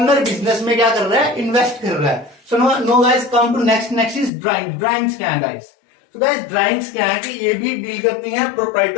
बिजनेस में क्या कर रहा है, इन्वेस्ट कर रहा है। So now guys, come to next is drawing. Drawings क्या है गाइस? तो गाइस, ड्राइंग्स क्या है कि ये भी डील करती हैं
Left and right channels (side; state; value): right; drops out; at 4.3 s